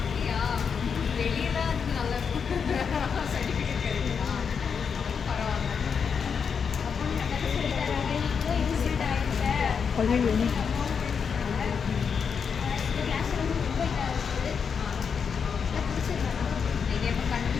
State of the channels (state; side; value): quieter; right; 6.4 dB